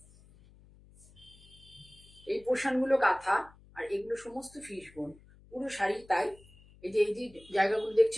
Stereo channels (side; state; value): left; noise; hum, 25 dB below the sound